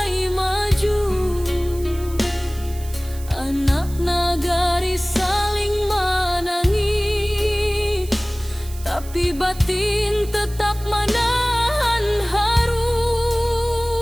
maju. Anak nagari saling menangis, tapi batin tetap menahan haru.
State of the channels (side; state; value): right; noise; hiss, 18 dB below the sound